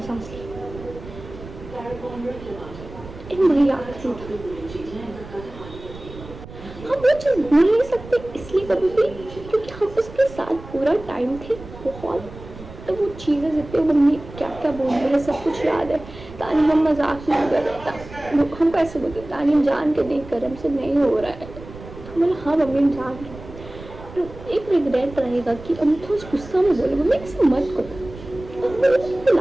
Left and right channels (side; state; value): right; noise; rumble, 16 dB below the sound